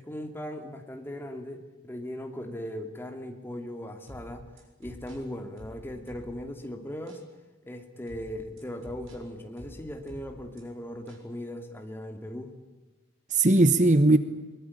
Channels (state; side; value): normal; both; correlation 0.70